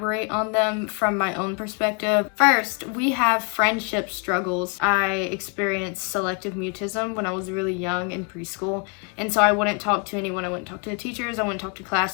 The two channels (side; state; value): right; quieter; 36.4 dB